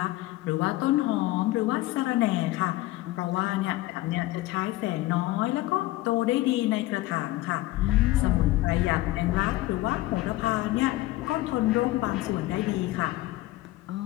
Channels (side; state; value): right; quieter; 17.8 dB